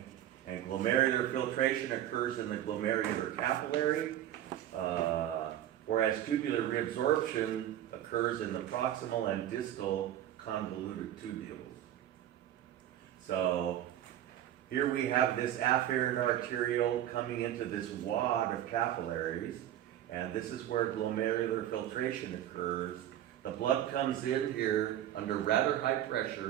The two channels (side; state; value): left; quieter; 11.9 dB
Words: And glomerular filtration occurs in the glomerular capillary, whereas tubular reabsorption occurs in the proximal and distal convoluted tubules. So here we have this afferent arteriole coming into this wad of capillaries, and this is where glomerular filtration occurs. The blood comes in here under rather high